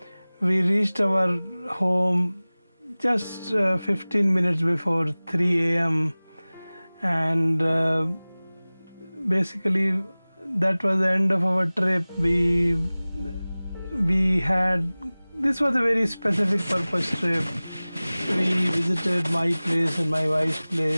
We reached our home just 15 minutes before 3 a.m. and basically that was the end of our trip. We had, this was a very specific purpose trip. We visited my place and my wife's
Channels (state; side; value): inverted; both; correlation -0.99